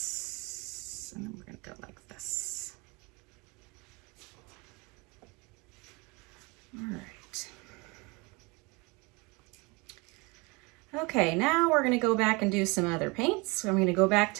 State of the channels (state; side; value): quieter; left; 27.0 dB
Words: and then we're gonna go like this. All right. Okay, now we're gonna go back and do some other paints. So I'm gonna go back